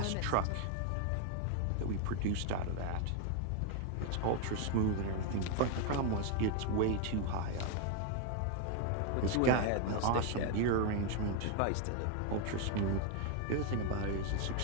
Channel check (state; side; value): different; both; correlation 0.01